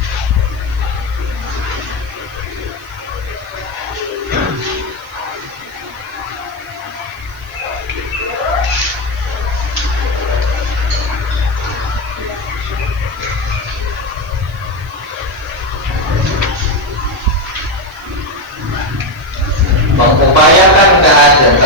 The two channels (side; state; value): right; noise; hiss, 26 dB below the sound